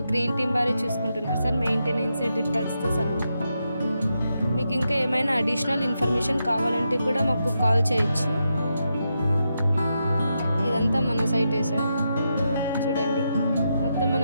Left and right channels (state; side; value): inverted; both; correlation -0.85